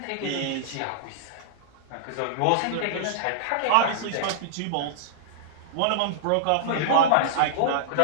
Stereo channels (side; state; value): both; different; correlation -0.02